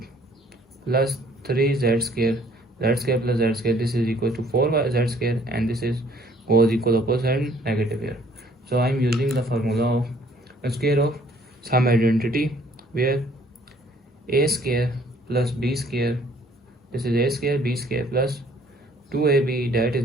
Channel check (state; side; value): normal; both; correlation 0.60